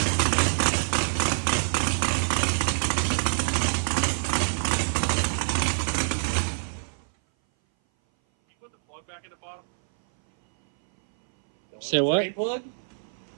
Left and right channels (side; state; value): left; silent; 59 dB below the other